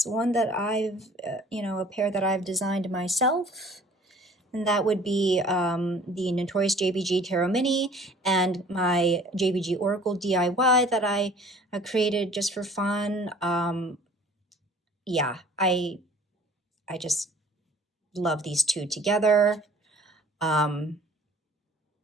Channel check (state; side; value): normal; both; correlation 0.50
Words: one that I've, a pair that I've designed myself, and that would be the Notorious JBG Tarot Mini and my JBG Oracle DIY that I created just for fun. Yeah, I just love these two together. I